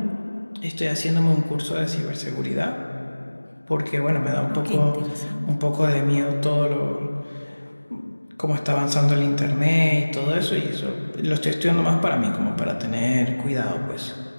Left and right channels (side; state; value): both; inverted; correlation -1.00